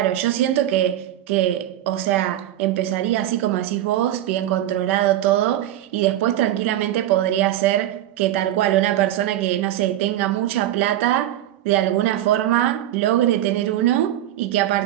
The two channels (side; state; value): left; quieter; 12.9 dB